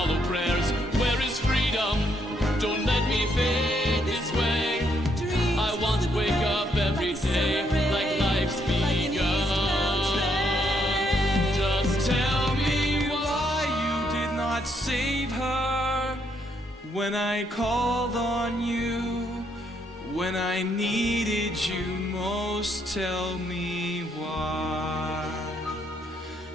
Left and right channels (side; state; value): both; normal; correlation 0.73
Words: prayers. Where is freedom? Don't let me fade this way. I want to wake up every day like life's begun. Just tell me why you did not save her when I called on you, when I needed you most. Tell me why.